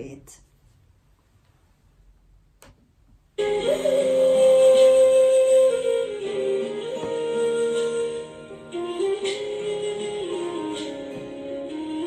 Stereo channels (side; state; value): both; identical; correlation 1.00